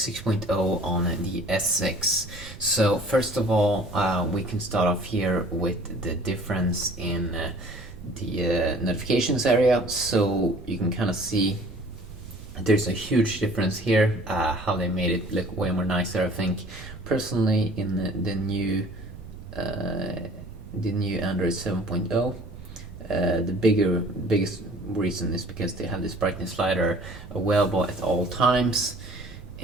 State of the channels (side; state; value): right; noise; rumble, 17 dB below the sound